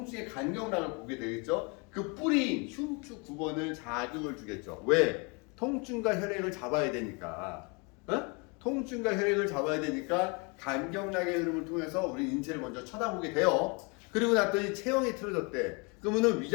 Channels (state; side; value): quieter; right; 31.5 dB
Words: 간경락을 보게 되겠죠. 그 뿌리인 흉추 9번을 자극을 주겠죠. 왜? 통증과 혈액을 잡아야 되니까. 통증과 혈액을 잡아야 되니까 간경락의 흐름을 통해서 우리 인체를 먼저 쳐다보게 돼요. 그리고 났더니 체형이 틀어졌대. 그러면은